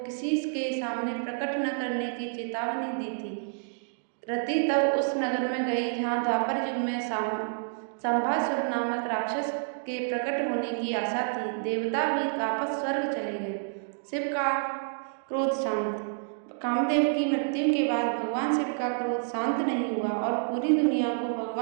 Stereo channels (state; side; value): silent; left; digital silence